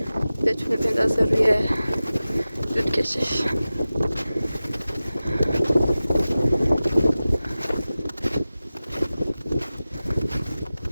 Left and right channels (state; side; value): inverted; both; correlation -0.96